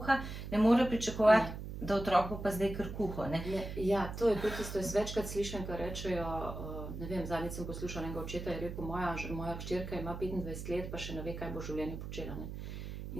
ne more pričakovati, da otrok bo pa zdaj kar kuho. Ja, to je tudi isto, jaz večkrat slišim, kar rečejo, ne vem, zadnjič sem poslušala enega očeta, je rekel, moja hčerka ima 25 let, pa še ne ve, kaj bo v življenju počela. Ne?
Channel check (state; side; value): noise; right; hum, 8 dB below the sound